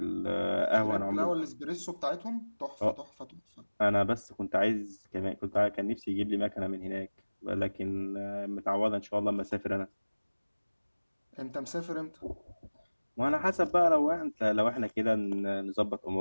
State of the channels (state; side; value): inverted; both; correlation -1.00